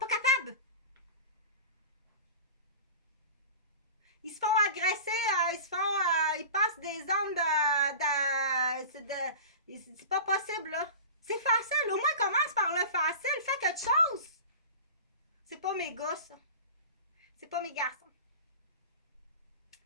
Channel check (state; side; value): inverted; both; correlation -0.34